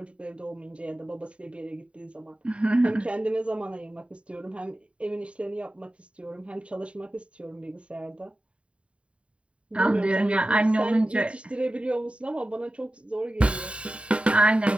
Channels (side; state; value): left; late; 0.060 ms